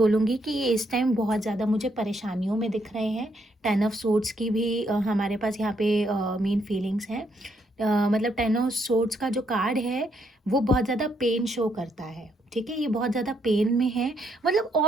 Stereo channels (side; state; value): both; normal; correlation 0.75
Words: कि ये इस टाइम बहुत ज़्यादा मुझे परेशानियों में दिख रहे हैं। 10 ऑफ सोर्ड्स की भी हमारे पास यहाँ पे मेन फीलिंग्स हैं। मतलब 10 ऑफ सोर्ड्स का जो कार्ड है, वो बहुत ज़्यादा पेन शो करता है, ठीक है। ये बहुत ज़्यादा पेन में है, मतलब